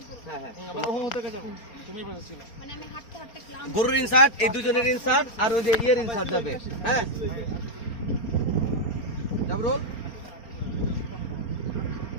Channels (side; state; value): right; late; 4.3 ms